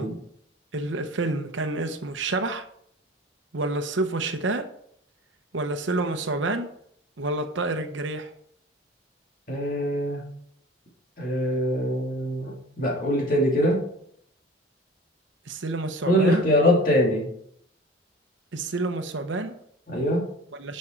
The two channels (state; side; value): normal; both; correlation 0.39